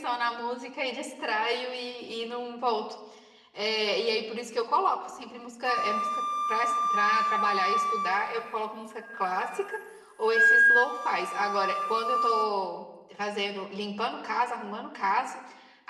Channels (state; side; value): identical; both; correlation 1.00